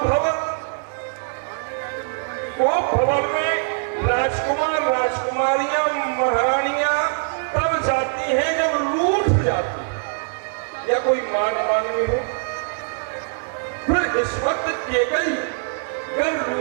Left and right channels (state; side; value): silent; left; digital silence